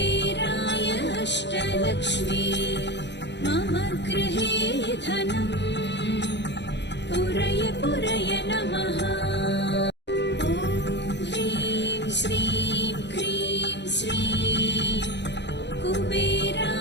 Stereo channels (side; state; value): right; late; 0.51 ms